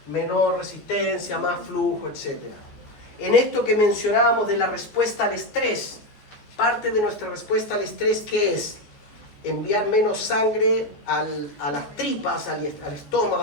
menor resistencia, más flujo, etc. En esto que mencionábamos de la respuesta al estrés, parte de nuestra respuesta al estrés, ¿qué es? Enviar menos sangre a las tripas, al estómago,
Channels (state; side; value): late; right; 14 ms